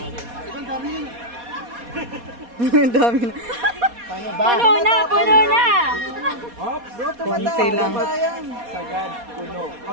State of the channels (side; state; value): left; late; 4.2 ms